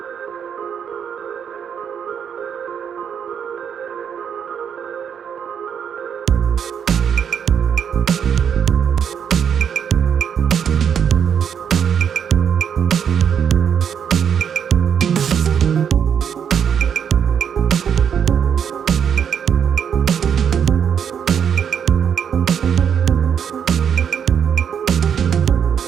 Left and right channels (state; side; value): quieter; left; 7.9 dB